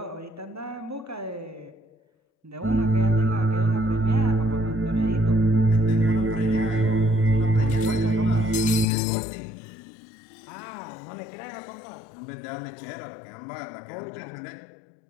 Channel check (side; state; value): right; drops out; at 8.8 s